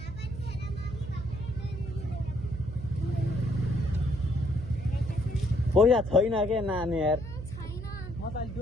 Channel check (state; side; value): noise; right; hum, 9 dB below the sound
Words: पैसा छैन के नानी यार